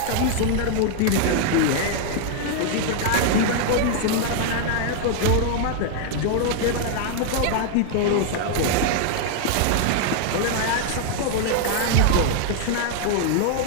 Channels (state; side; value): different; both; correlation 0.00